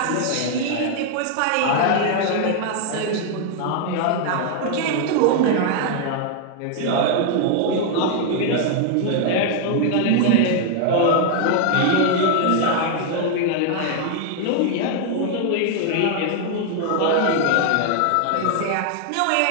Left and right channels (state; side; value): different; both; correlation 0.00